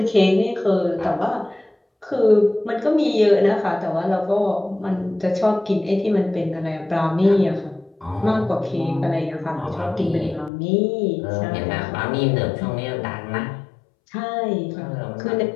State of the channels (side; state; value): right; drops out; at 10.5 s